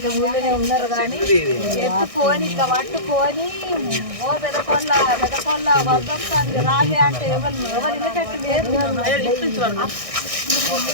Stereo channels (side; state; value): left; late; 1.6 ms